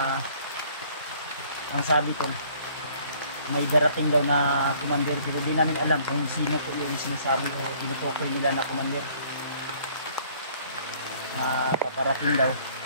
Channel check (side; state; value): both; inverted; correlation -0.58